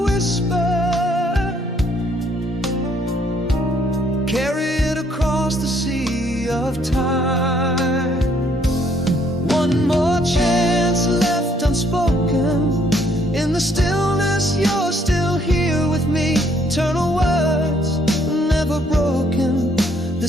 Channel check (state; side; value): normal; both; correlation 0.67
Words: whisper, carry it across the sea of time. One more chance left unspoken. In the stillness, you're still here with me. Eternal words, never broken.